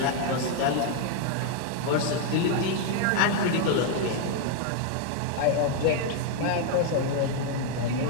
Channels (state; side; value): different; both; correlation 0.00